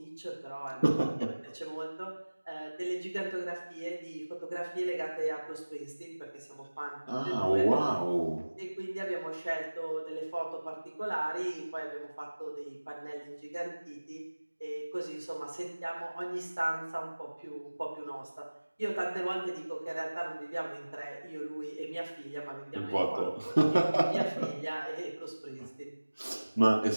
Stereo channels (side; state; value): both; inverted; correlation -1.00